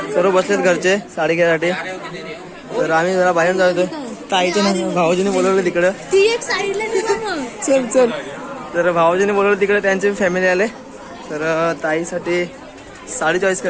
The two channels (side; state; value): both; identical; correlation 1.00